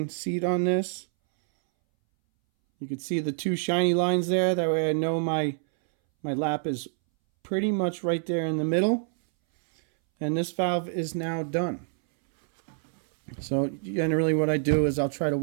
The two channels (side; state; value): left; silent; 61 dB below the other